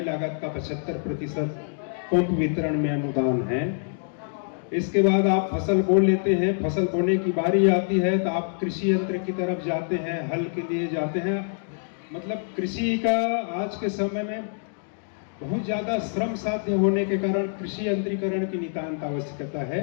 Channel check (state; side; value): silent; right; digital silence